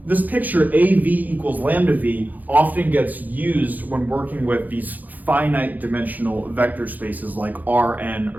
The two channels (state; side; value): late; left; 0.082 ms